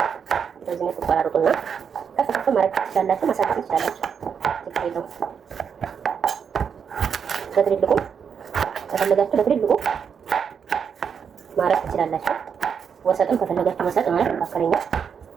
በዚህ መልኩ ቆራርጡና ከፍ ማድረግ ትችላላችሁ፣ ማሳደግ ትችላላችሁ። ችግር የለውም። በትልልቁ ከፈለጋችሁ በትልልቁ ማድረግ ትችላላችሁ። ወሰጥም ከፈለጋችሁ ወሰጥ ማለት መካከለኛ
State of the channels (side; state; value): left; quieter; 7.0 dB